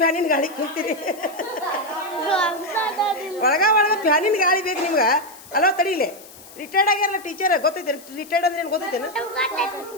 ಗಾಳಿ ಕುಂತೀರಿ ಒಳಗ ಫ್ಯಾನಿನ ಗಾಳಿ ಬೇಕು ನಿಮ್ಗೆ ಅಲೋ ತಡೀಲಿ ರಿಟೈರ್ಡ್ ಆಗ್ಯಾರಲ್ಲ ಟೀಚರ್ ಗೊತ್ತೈತೆ ರಿಟೈರ್ಡ್ ಅಂದ್ರೆ ಏನು ಗೊತ್ತೈತೇನು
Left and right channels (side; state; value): left; noise; hiss, 20 dB below the sound